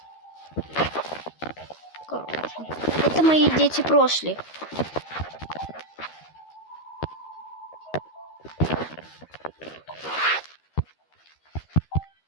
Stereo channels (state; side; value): late; right; 13 ms